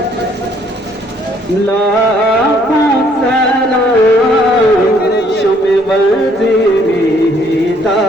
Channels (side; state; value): both; normal; correlation 0.64